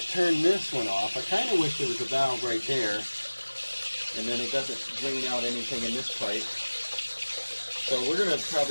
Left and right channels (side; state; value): both; inverted; correlation -1.00